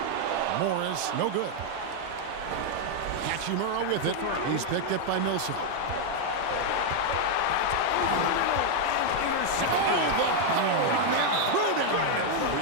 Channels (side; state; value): both; different; correlation 0.00